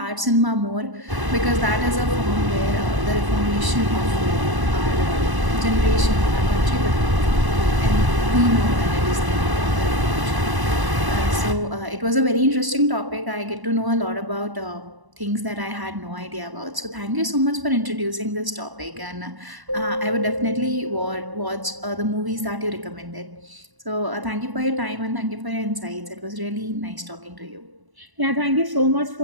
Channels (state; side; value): late; left; 1.0 ms